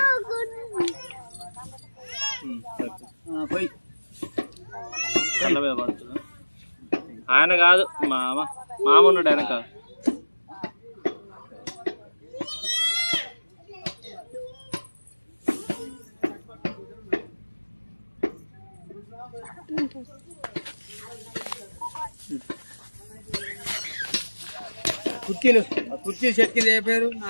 ఆయన కాదు, మామ ఉన్నాడు వెనక. కుర్చీలు సెట్ కింద ఏ పేరు?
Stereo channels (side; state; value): both; inverted; correlation -1.00